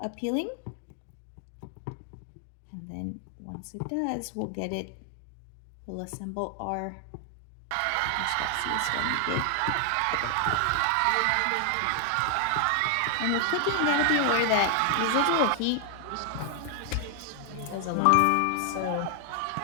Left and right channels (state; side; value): different; both; correlation 0.00